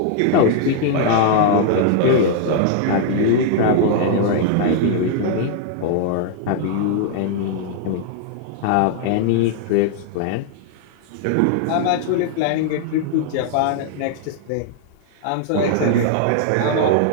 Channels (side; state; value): both; different; correlation -0.01